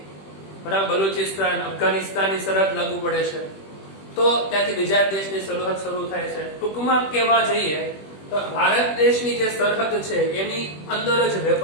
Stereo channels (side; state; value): right; late; 21 ms